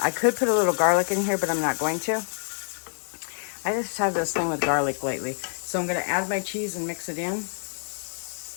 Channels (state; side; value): silent; right; digital silence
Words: could put a little garlic in here, but I'm not going to. I just have this thing with garlic lately. So I'm going to add my cheese and mix it in.